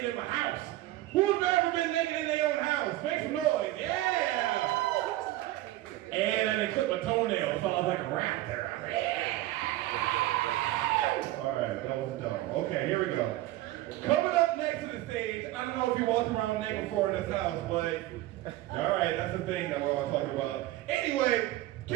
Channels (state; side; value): quieter; left; 16.3 dB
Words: in my house. Who's ever been naked in their own house? Make some noise. Yeah! And I didn't clip my toenails, so I was like a rat there. I was like, yeah! All right, that was dumb. Okay, here we go. Coming up next to the stage, I don't know if you walked around naked before in this house, but all right, that's the thing that we're all talking about. Anyway,